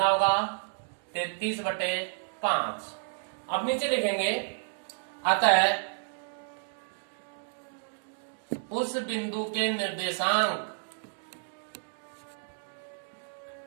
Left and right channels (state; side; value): silent; left; digital silence